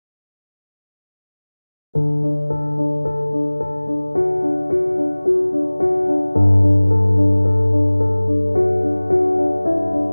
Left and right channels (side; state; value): both; inverted; correlation -1.00